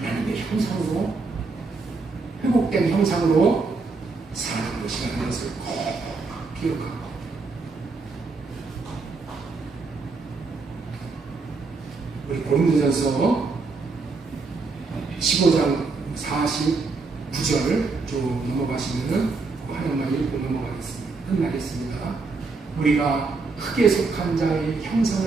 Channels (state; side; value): quieter; left; 4.1 dB